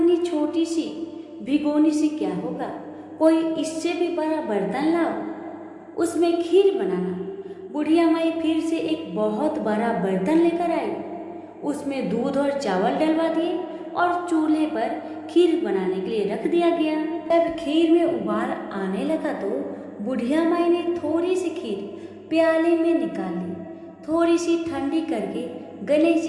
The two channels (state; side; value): identical; both; correlation 1.00